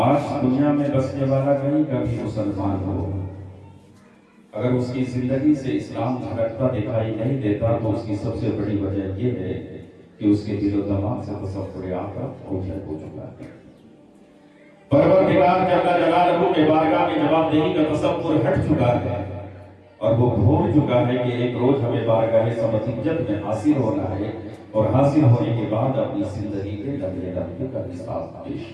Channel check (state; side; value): identical; both; correlation 1.00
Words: دنیا میں بسنے والا کہیں کا بھی مسلمان ہو، اگر اس کی زندگی سے اسلام جھلکتا دکھائی نہیں دیتا تو اس کی سب سے بڑی وجہ یہ ہے کہ اس کے دل و دماغ سے تصور آخرت اوجھل ہو چکا ہے۔ پروردگار جل جلالہ کے بارگاہ میں جواب دہی کا تصور ہٹ چکا ہے اور وہ بھول چکا ہے کہ ایک روز ہمیں بارگاہ سمجھت میں حاصل ہونا ہے اور حاصل ہونے کے بعد اپنی زندگی کے لمحے لمحے کا حساب پیش